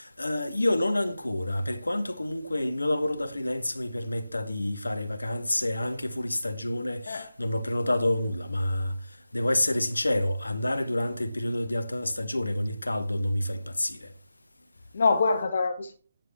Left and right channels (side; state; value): both; inverted; correlation -0.94